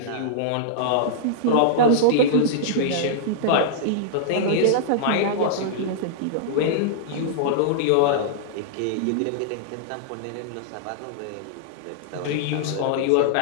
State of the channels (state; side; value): different; both; correlation -0.02